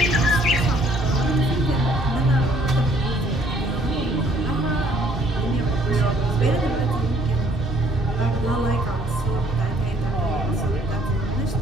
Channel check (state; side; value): normal; both; correlation 0.62